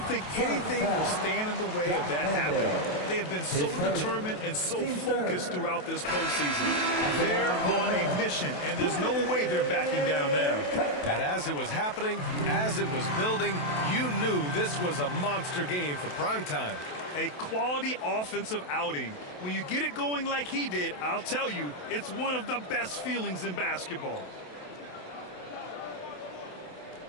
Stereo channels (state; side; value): late; right; 27 ms